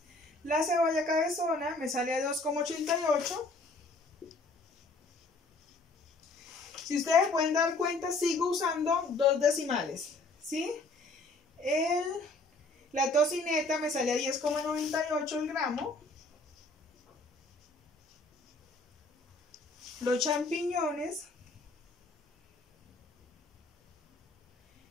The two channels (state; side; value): quieter; right; 3.1 dB